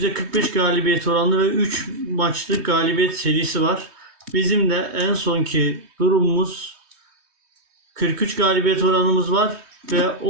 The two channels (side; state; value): left; late; 3.2 ms